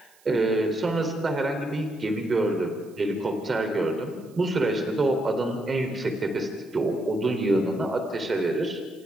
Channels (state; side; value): noise; right; hiss, 29 dB below the sound